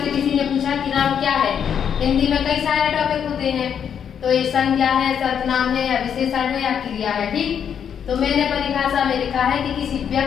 किसी ने पूछा कि राम क्या है, हिंदी में कई सारे टॉपिक होते हैं, तो ये संज्ञा है, सर्वनाम है या विशेषण है या क्रिया है। ठीक, तो मैंने परिभाषा में लिखा है कि किसी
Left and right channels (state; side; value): quieter; right; 8.1 dB